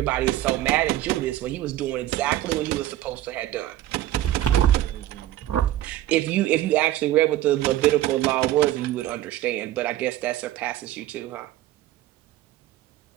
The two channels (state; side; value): quieter; left; 14.1 dB